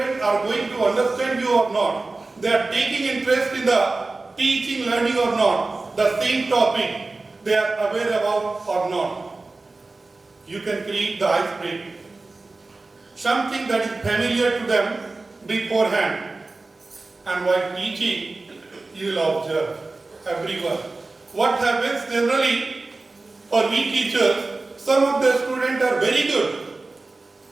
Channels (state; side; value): quieter; left; 3.4 dB